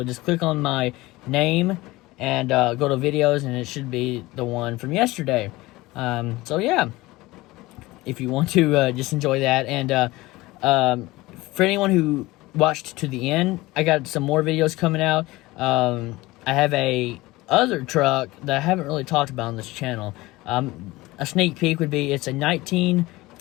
Just click on my name and go to videos, and it should be the one from yesterday. So yeah, if you want to just enjoy that. And for anyone who watched to the end, I got some more videos coming out. I have a other truck that I haven't really talked about on this channel. A sneak peek would be, it's a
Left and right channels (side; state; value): right; quieter; 19.9 dB